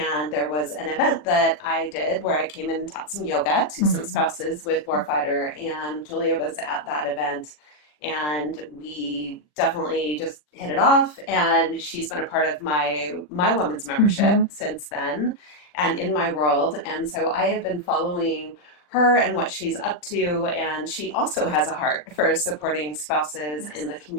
there was an event that I did where I came in and taught some yoga to some spouses with Warfighter, and Julia was at that event. And we definitely just hit it off. And she's been a part of my women's membership since then and in my world. And so I have been following her and what she's up to. And she also has a heart for supporting spouses in the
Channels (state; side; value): late; right; 40 ms